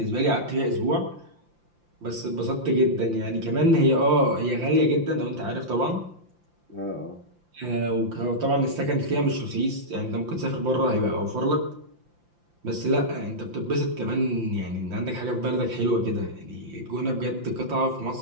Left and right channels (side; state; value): left; late; 5.8 ms